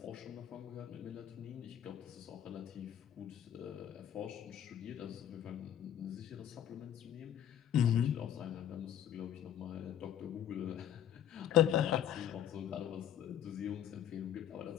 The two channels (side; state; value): right; quieter; 10.2 dB